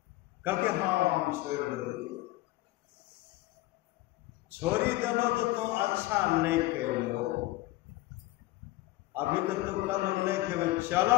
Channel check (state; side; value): quieter; right; 17.9 dB